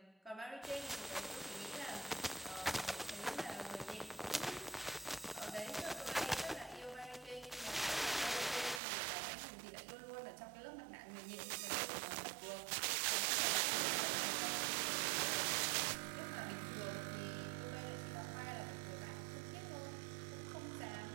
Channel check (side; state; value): left; drops out; at 8.8 s